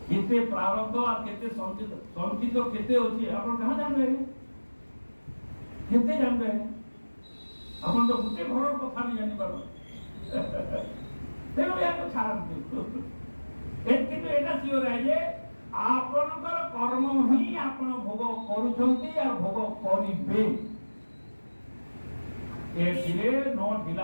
କେତେ ପ୍ରାରବ୍ଧ আর କେତେ ସଞ୍ଚିତ କେତେ ଅଛି ଆପଣ କାହା ଜାଣିବେ କେତେ ଜାଣିବେ ଆପଣ ତ ଗୋଟେ ଘରର କଥା ବି ଜାଣିପାର ତେଣୁ ଏହାକୁ ଛାଡ଼ନ୍ତୁ କିନ୍ତୁ ଏଇଟା ସିଓର ଯେ ଆପଣଙ୍କର କର୍ମ ହିଁ ଆପଣ ଭୋଗ କରୁଛନ୍ତି ଆଉ ଭୋଗ କରିବେ ଏଥିରେ ନ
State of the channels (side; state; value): both; inverted; correlation -1.00